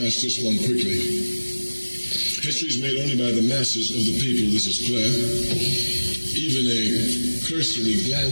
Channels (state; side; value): inverted; both; correlation -1.00